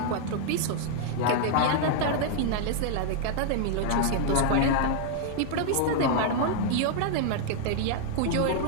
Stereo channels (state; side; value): different; both; correlation -0.01